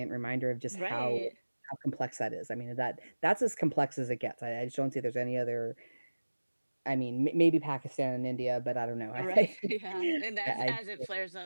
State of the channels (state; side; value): inverted; both; correlation -1.00